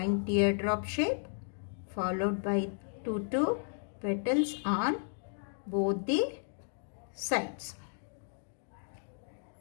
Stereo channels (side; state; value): right; silent; digital silence